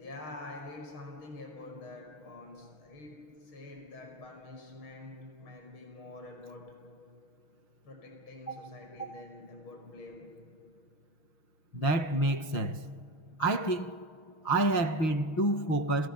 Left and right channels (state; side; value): late; right; 6.3 ms